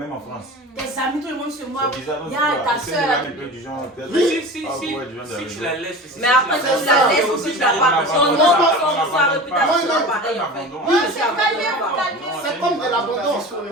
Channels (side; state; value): both; normal; correlation 0.33